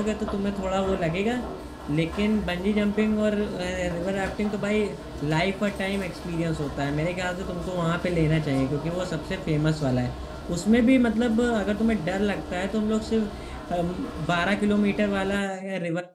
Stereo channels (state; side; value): identical; both; correlation 1.00